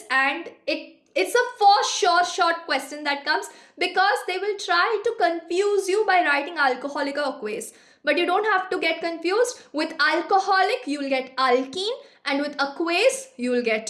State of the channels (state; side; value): identical; both; correlation 1.00